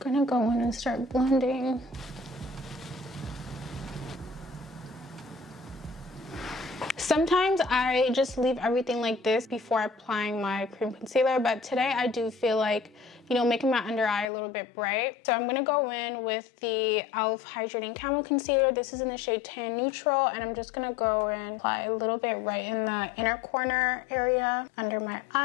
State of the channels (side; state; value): right; drops out; at 14.3 s